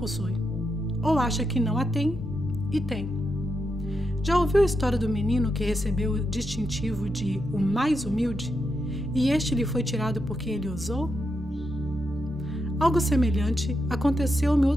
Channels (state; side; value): normal; both; correlation 0.84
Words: ou acha que não a tem e tem. Já ouviu a história do menino que recebeu o distintivo de o mais humilde e este lhe foi tirado porque ele ousou? Algo semelhante aconteceu-me